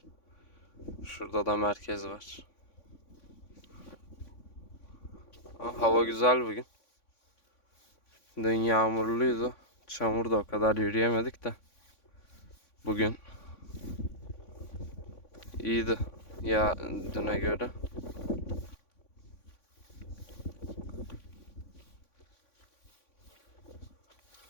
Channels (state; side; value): late; right; 3.5 ms